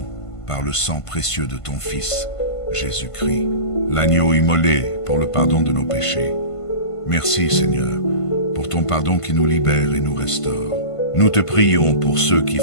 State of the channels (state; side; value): late; right; 1.5 ms